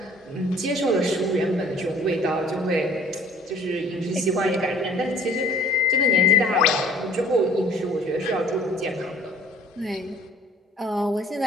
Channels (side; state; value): both; normal; correlation 0.53